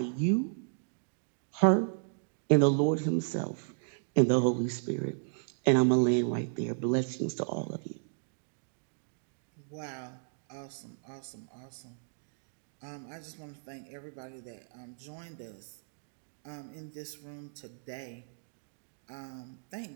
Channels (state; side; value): silent; left; digital silence